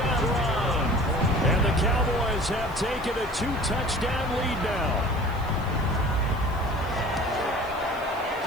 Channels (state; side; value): noise; right; hiss, 24 dB below the sound